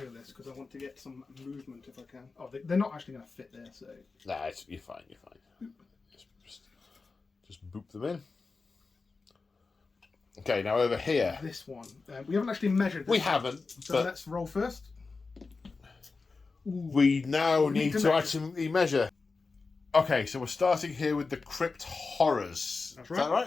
this because I want to get some movement if I can. Oh, they're not actually going to fit there, so... Nah, you're fine, you're fine. Just boop them in. Okay, now over here. This one. We haven't actually measured this. We haven't. So let's roll first. We now need to actually measure. Okay, so we're starting here with the Crypt Horrors. That's right. Is that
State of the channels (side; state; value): right; quieter; 4.2 dB